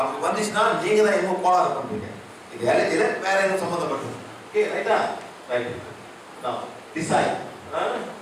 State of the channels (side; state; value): both; identical; correlation 1.00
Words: வந்துச்சுன்னா நீங்க தான் எங்க கோளாறு பண்றீங்க. இது அலர்ஜியில வேற எதுவும் சம்பந்தப்பட்டது. ஓகே ரைட்டா? ரைட். நான் டிசைட்